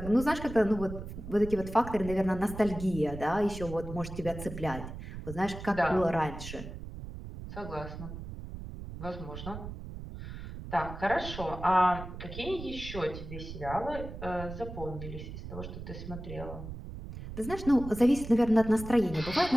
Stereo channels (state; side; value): noise; right; rumble, 10 dB below the sound